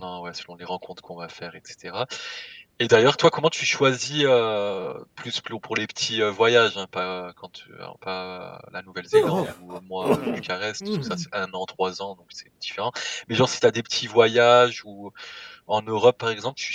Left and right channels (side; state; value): both; identical; correlation 1.00